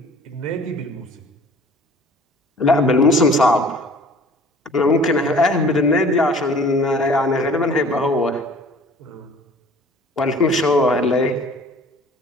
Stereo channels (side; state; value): both; normal; correlation 0.49